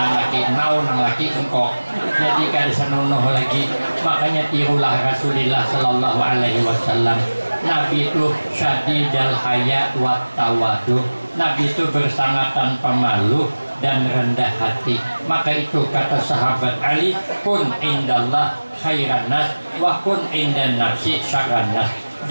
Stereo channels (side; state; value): both; inverted; correlation -1.00